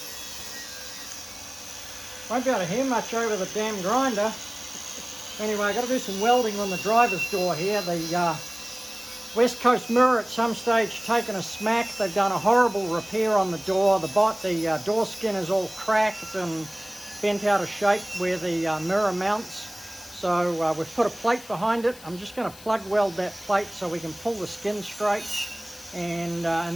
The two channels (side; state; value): left; noise; hiss, 19 dB below the sound